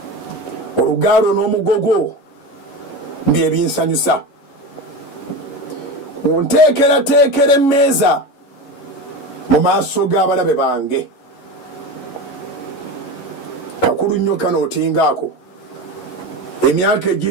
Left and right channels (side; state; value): right; late; 11 ms